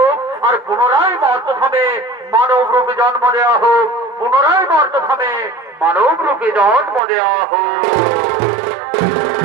আর পুনরায় মর্দধামে মানব রূপে জন্ম দেওয়া হোক, পুনরায় মর্দধামে মানব রূপে জন্ম দেওয়া হোক।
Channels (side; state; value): left; drops out; at 7.0 s